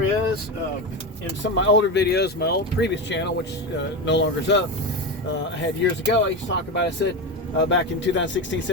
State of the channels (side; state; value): both; normal; correlation 0.18